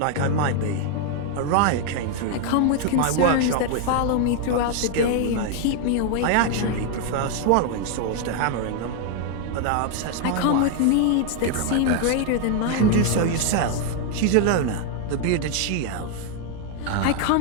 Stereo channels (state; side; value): different; both; correlation 0.00